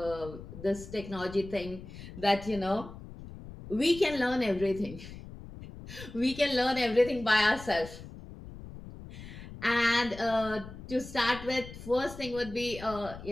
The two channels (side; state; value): left; noise; rumble, 14 dB below the sound